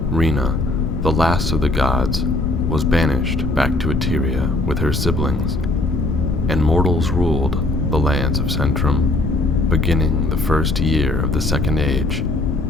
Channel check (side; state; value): left; noise; rumble, 3 dB below the sound